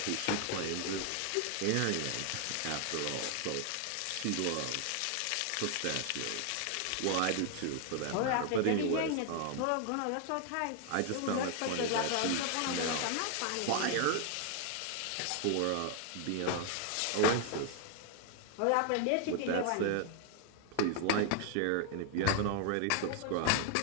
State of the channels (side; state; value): both; different; correlation 0.00